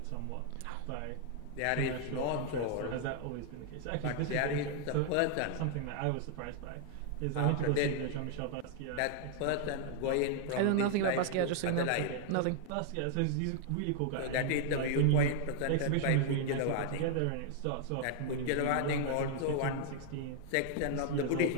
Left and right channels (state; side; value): different; both; correlation 0.00